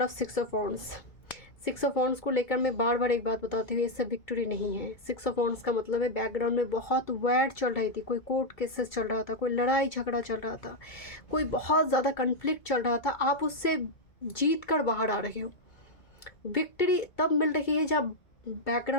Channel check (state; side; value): late; right; 2.3 ms